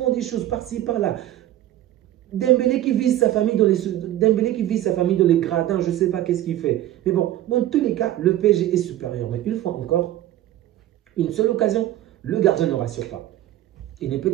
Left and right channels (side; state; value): left; quieter; 13.5 dB